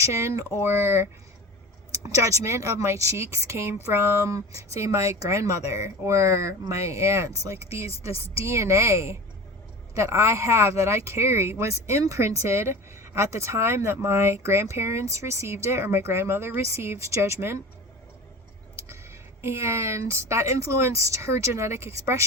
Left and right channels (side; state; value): both; normal; correlation 0.34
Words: or judgment of my cheeks came from, say, my grandmother or my aunts. Like this DNA that I have, that I carry, was imprinted at the time that my grandparents received it, or my grandmother received judgment, and that influenced her genetic